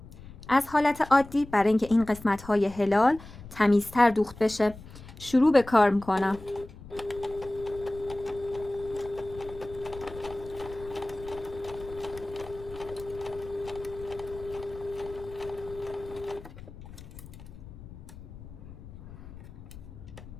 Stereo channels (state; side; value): noise; left; rumble, 16 dB below the sound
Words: از حالت عادی برای اینکه این قسمت های هلال تمیزتر دوخت بشه. شروع به کار میکنم.